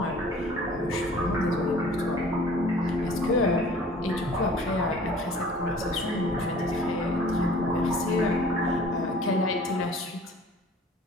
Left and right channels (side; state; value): both; normal; correlation 0.49